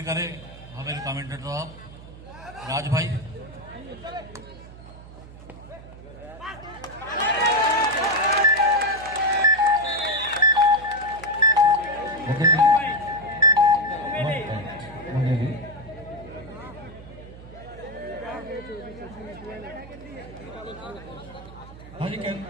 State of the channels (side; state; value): right; noise; hum, 17 dB below the sound